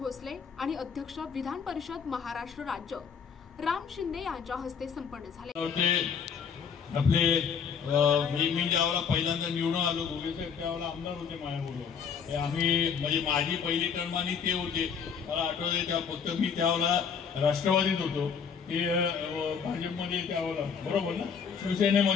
आणि अध्यक्ष विधान परिषद महाराष्ट्र राज्य राम शिंदे यांच्या हस्ते संपन्न झाले। आपले मी ज्यावेळेला पहिल्यांदा निवडून आलो गोगेसाहेब त्यावेळेला आमदार होते माझ्याबरोबर। आम्ही म्हणजे माझी पहिली टर्म आणि ते होते, मला आठवते त्या फक्त मी त्यावेळेला राष्ट्रवादीत होतो, ते भाजपमध्ये त्यावेळेला बरोबर ना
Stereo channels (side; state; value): right; quieter; 6.6 dB